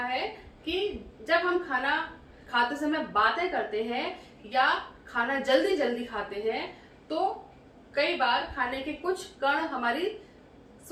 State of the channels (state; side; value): identical; both; correlation 1.00